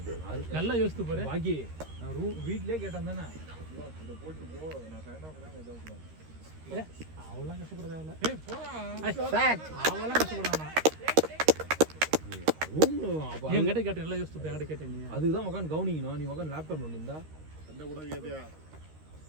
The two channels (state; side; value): late; left; 13 ms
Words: நல்லா யோசித்து பாரு பாக்கி நான் வீட்லயே கேட்டேன் தானே இத போட்டு போ நான் ஃபேனா ஏதோ அவ்வளவு கஷ்டப்பட தேவையில்ல ஏய் போடா அவ்வளவு கஷ்டப்படானா ரூம் அப்ப என்கிட்ட கேட்டேன் நல்லா யோசித்து போய் என்கிட்ட கேட்டேன் நீ அதுக்கு தான் உட்காந்து கவனிக்கணும் நீ உட்காந்து லேப்டாப் பண்ணிருந்தா சண்டை கூட கேட்டியா